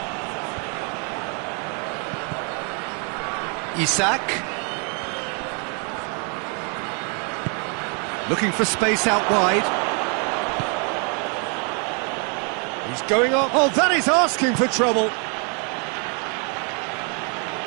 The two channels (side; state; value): left; quieter; 37.0 dB